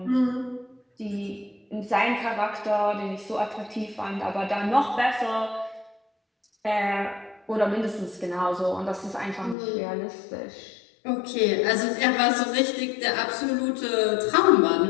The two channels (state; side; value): drops out; right; at 9.6 s